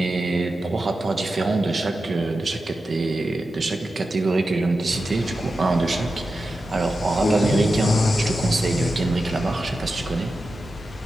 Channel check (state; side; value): normal; both; correlation 0.91